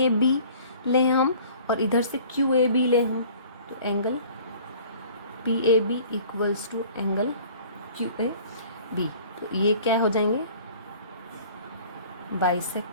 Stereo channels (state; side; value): inverted; both; correlation -0.49